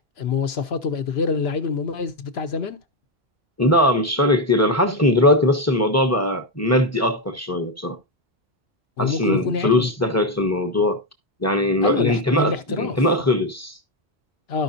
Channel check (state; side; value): normal; both; correlation 0.07